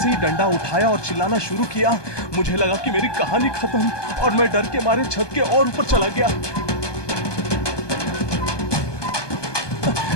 ही डंडा उठाया और चिल्लाना शुरू किया, मुझे लगा कि मेरी कहानी खत्म और मैं डर के मारे छत के और ऊपर चला गया।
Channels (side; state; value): right; late; 1.2 ms